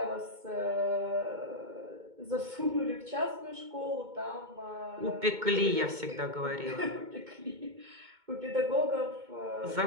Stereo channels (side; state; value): left; late; 2.2 ms